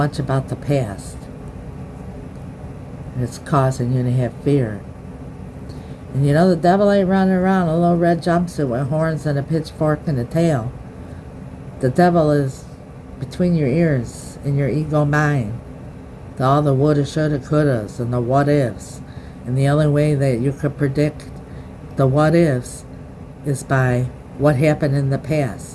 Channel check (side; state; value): both; identical; correlation 1.00